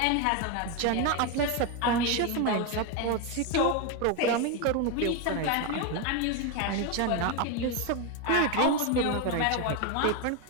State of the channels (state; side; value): different; both; correlation 0.02